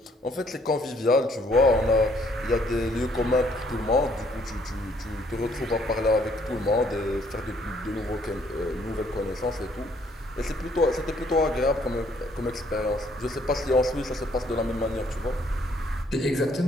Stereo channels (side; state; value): both; normal; correlation 0.65